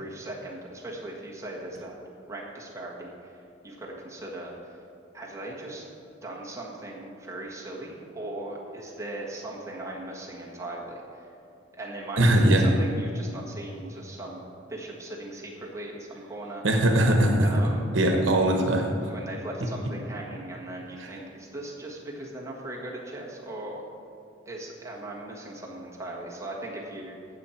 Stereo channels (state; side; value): normal; both; correlation 0.61